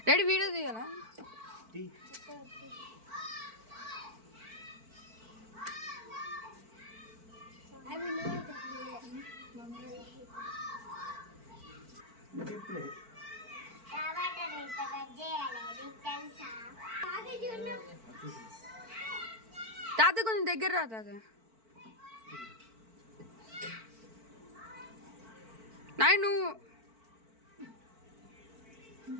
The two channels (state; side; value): late; left; 4.5 ms